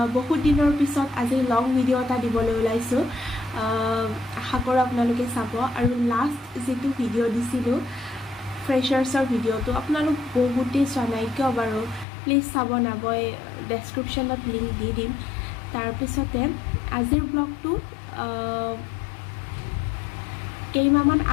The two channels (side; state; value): right; drops out; at 12.1 s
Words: বহুত দিনৰ পিছত আজি লং ভিডিঅ' এটা দিবলৈ ওলাইছোঁ। আশা কৰোঁ আপোনালোকে চাব আৰু লাষ্ট যেটো ভিডিঅ' দিছিলোঁ ফ্ৰেছাৰ্ছৰ ভিডিঅ'টো আপোনালোক বহুতেই চোৱা নাই কিয় বাৰু প্লিজ চাব না মই ডেছক্ৰিপশ্যনত লিংক দি দিম। তাৰপিছতে আজিৰ ব্লগটো কেইমাহমান